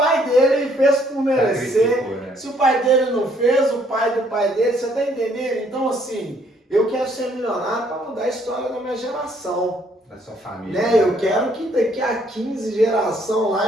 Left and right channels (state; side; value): normal; both; correlation 0.66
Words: dele fez por merecer. Né? Se o pai dele não fez, o pai do pai dele, você tá entendendo? Então, assim... Eu quero ser milionário para mudar a história da minha geração. Da sua família. Né? Eu quero que daqui a 15 gerações